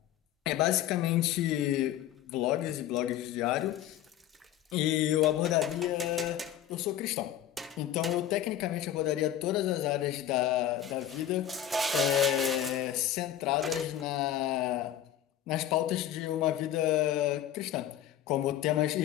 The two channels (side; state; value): right; quieter; 11.1 dB